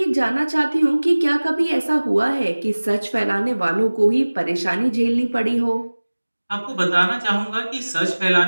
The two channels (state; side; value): inverted; both; correlation -1.00